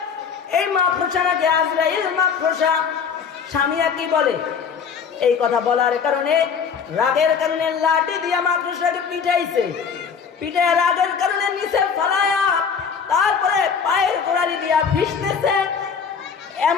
এই মাকড়সা নাকি আজরাইল মাকড়সা। স্বামী কি বলে, এই কথা বলার কারণে রাগের কারণে লাঠি দিয়া মাকড়সাকে পিটাইছে, পিটায় রাগের কারণে নিচে ফালায়া তারপরে পায়ের গোড়ালি দিয়া ভিজতেছে।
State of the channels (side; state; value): right; quieter; 6.5 dB